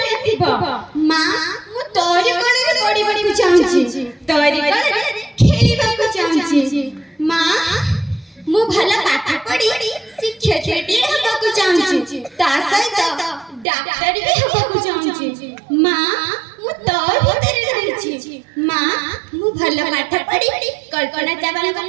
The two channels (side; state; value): left; drops out; at 13.7 s